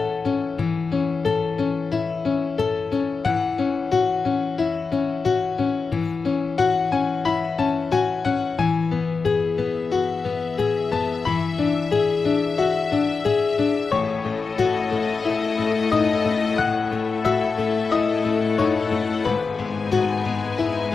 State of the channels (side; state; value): right; quieter; 4.4 dB